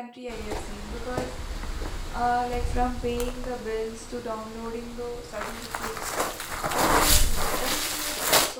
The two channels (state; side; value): identical; both; correlation 1.00